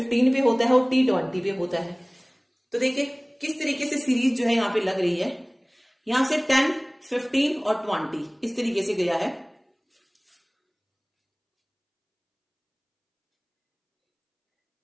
पे होता है और T 20 पे होता है। तो देखिए किस तरीके से सीरीज जो है यहाँ पे लग रही है, यहां से 10, 15 और 20 इस तरीके से गया है।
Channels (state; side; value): identical; both; correlation 1.00